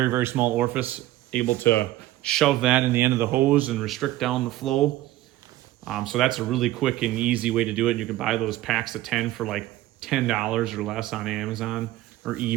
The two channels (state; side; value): quieter; left; 15.8 dB